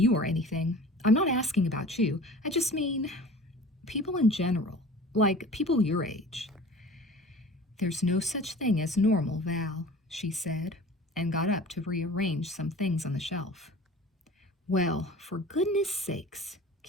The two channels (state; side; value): normal; both; correlation 0.42